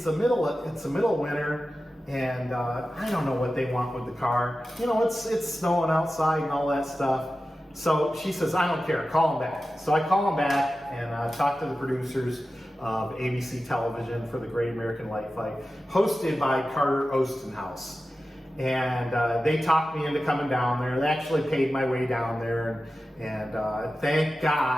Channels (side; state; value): both; normal; correlation 0.94